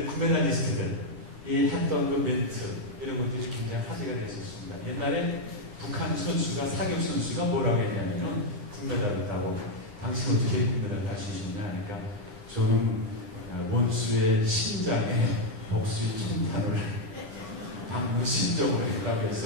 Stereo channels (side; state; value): left; late; 9.7 ms